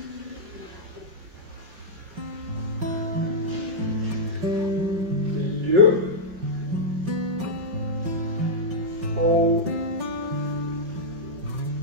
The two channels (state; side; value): late; left; 5.2 ms